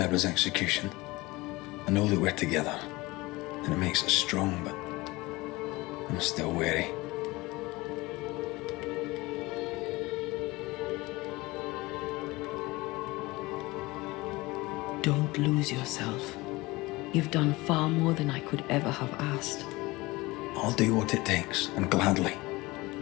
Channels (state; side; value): quieter; right; 21.6 dB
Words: execution. I know that we're together, and it makes us strong, but I'm still wary. Don't lose yourself. You've done far more than I could ever have asked. I'll do what it takes, and gladly.